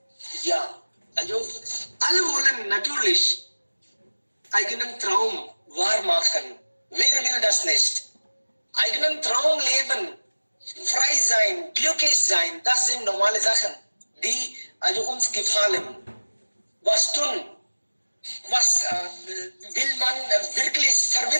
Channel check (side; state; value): both; inverted; correlation -1.00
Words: Ja, also alle wollen natürlich eigenen Traum wahr machen. Wer will das nicht? Eigenen Traum leben, frei sein, glücklich sein, das sind normale Sachen, die also uns gefallen. Was tun? Was will man wirklich